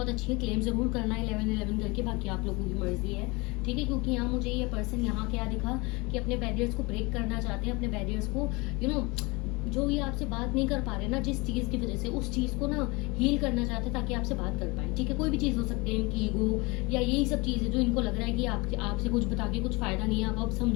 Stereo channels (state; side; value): quieter; right; 25.5 dB